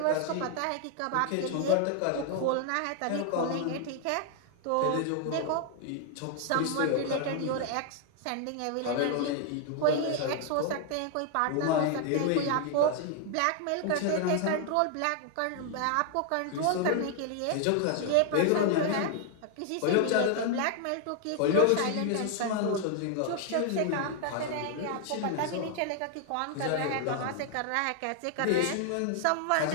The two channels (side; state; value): both; different; correlation 0.00